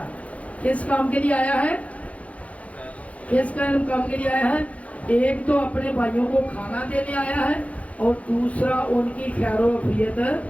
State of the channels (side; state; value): right; late; 0.066 ms